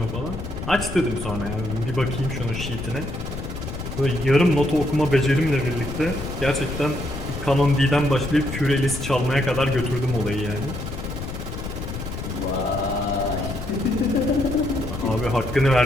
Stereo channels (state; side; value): noise; left; rumble, 7 dB below the sound